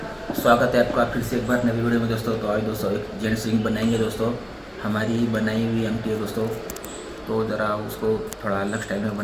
स्वागत है आपका फिर से एक बार नवी वीडियो में। दोस्तों तो आज दोस्तों एक जेंट्स रिंग बनाएंगे। दोस्तों हमारी बनाई हुई अंगठी है दोस्तों, तो ज़रा उसको थोड़ा अलग स्टाइल में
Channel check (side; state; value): both; identical; correlation 1.00